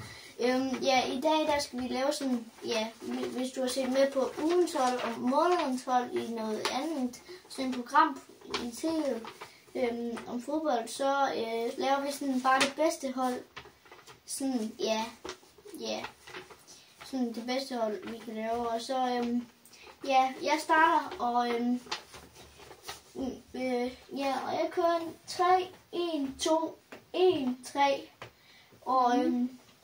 Ja, i dag der skal vi lave sådan, ja, hvis du har set med på ugens hold og månedens hold i noget andet, sådan et program i tv om fodbold, så laver vi sådan bare det bedste hold. Sådan, ja, sådan det bedste hold, vi kan lave. Og så, ja, jeg starter, og og jeg kører en 3, 1, 2, 1, 3, og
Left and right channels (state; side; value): identical; both; correlation 1.00